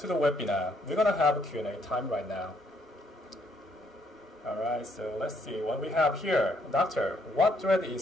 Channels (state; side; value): normal; both; correlation 0.70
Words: to the webinar. We're gonna have a Q&A time right now. All right, so let's see what we have here. Doctor, what thread